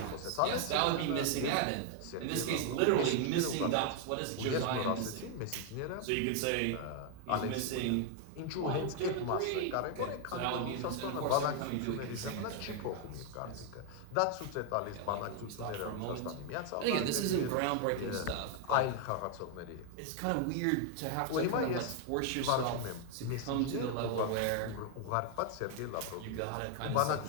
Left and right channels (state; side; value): different; both; correlation 0.00